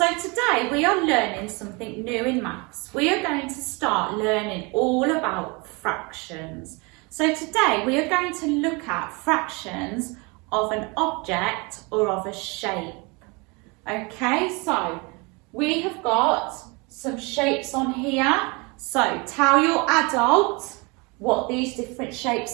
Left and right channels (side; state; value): left; quieter; 28.4 dB